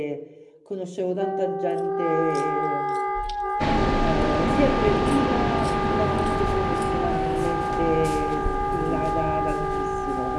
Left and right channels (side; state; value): both; identical; correlation 1.00